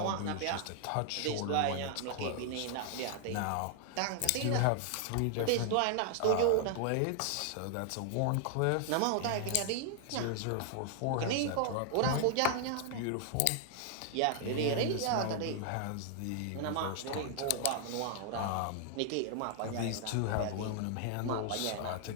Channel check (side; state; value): both; different; correlation 0.00